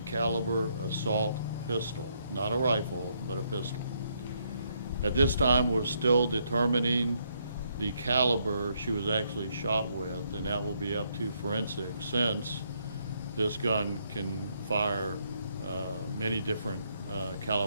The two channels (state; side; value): inverted; both; correlation -0.74